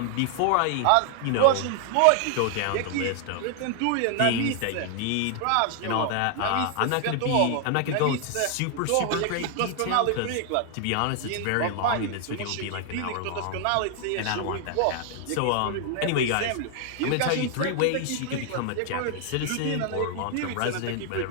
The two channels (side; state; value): both; different; correlation 0.00